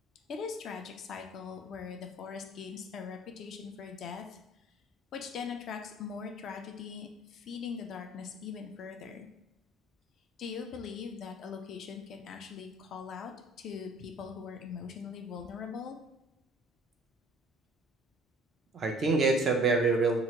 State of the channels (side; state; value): both; normal; correlation 0.52